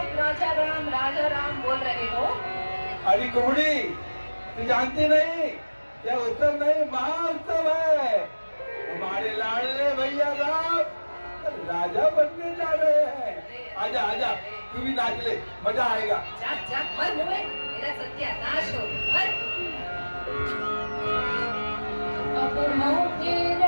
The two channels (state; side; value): inverted; both; correlation -1.00